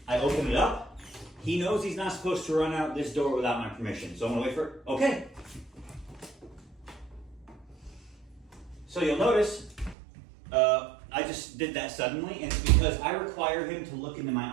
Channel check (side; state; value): left; drops out; at 10.0 s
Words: I open it up, he knows he's not supposed to run out this door without my permission. So I'm gonna wait for it, okay. So you'll notice, I just did that suddenly, and it's because I require him to look into